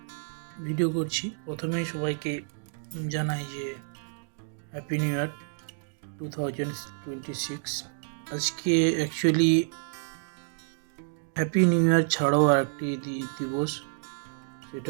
ভিডিও করছি। প্রথমেই সবাইকে জানাই যে হ্যাপি নিউ ইয়ার 2026। আজকে অ্যাকচুয়ালি হ্যাপি নিউ ইয়ার ছাড়াও আর একটি দিবস, সেটা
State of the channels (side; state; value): left; silent; digital silence